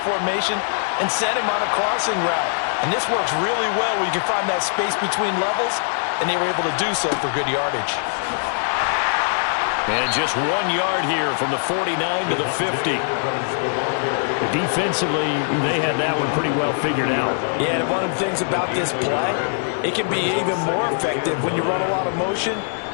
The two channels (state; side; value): silent; right; digital silence